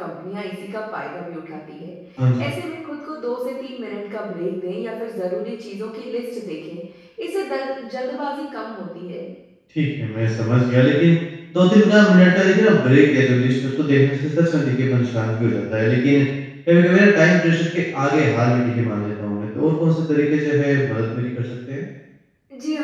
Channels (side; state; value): both; identical; correlation 1.00